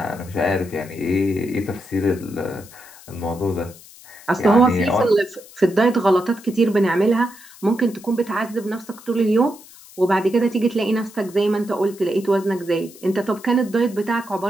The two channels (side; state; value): left; noise; hiss, 21 dB below the sound